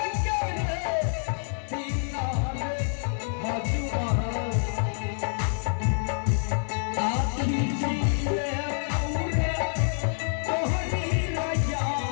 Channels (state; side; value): silent; right; digital silence